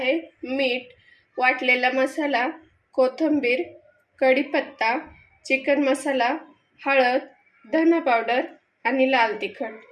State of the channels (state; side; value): identical; both; correlation 1.00